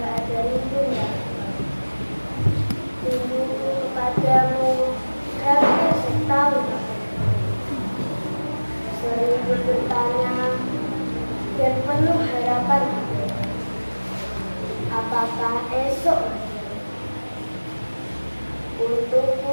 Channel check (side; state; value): both; inverted; correlation -1.00